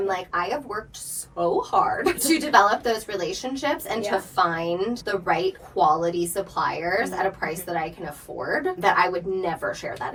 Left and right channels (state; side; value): identical; both; correlation 1.00